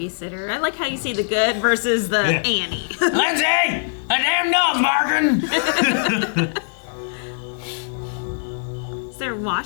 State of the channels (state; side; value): silent; right; digital silence